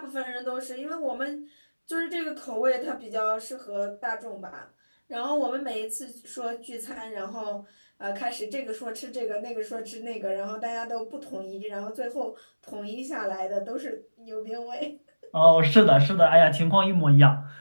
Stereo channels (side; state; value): both; inverted; correlation -1.00